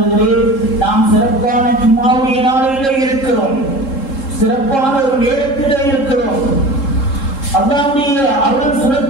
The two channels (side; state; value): right; late; 3.7 ms